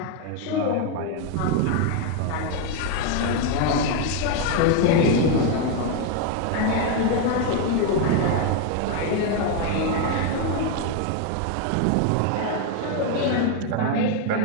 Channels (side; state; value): both; different; correlation 0.01